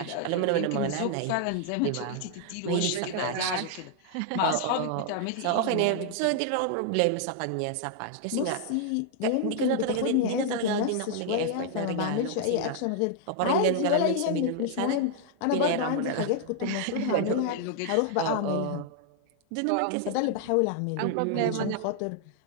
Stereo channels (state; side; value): different; both; correlation 0.00